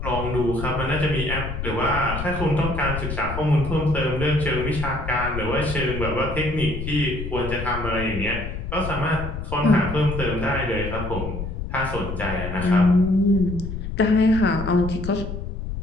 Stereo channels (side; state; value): left; noise; rumble, 6 dB below the sound